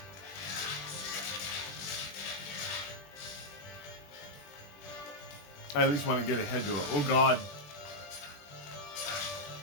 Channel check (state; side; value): late; right; 20 ms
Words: I at least want to get ahead to it. Oh god.